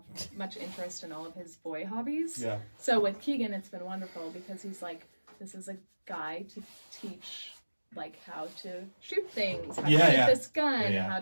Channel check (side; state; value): both; inverted; correlation -1.00